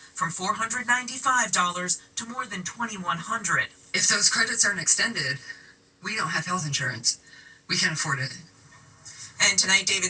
from $495 to more than $2,100. If those credits aren't extended, we don't have health insurance. We can't afford it. And tonight,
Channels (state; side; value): identical; both; correlation 1.00